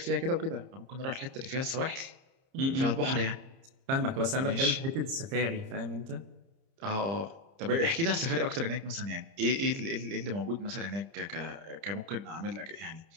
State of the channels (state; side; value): late; left; 30 ms